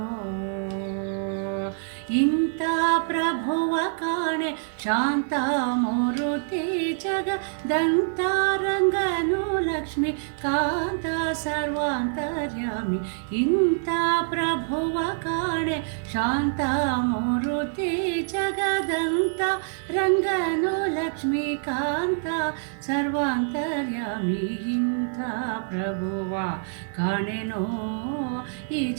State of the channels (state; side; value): silent; left; digital silence